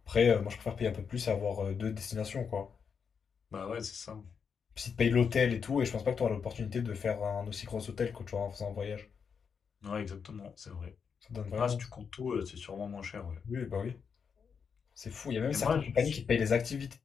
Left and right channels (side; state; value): right; quieter; 6.4 dB